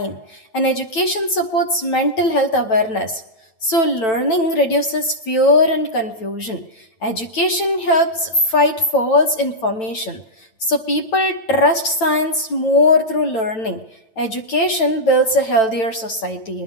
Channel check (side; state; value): right; late; 9.0 ms